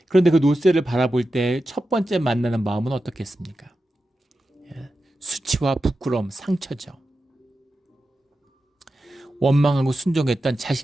그런데 그 놋새를 바라볼 때 첫 번째 만나는 마음은 어떻겠습니까? 수치와 부끄러움, 상처죠. 원망하고 순종했던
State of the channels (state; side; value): normal; both; correlation 0.91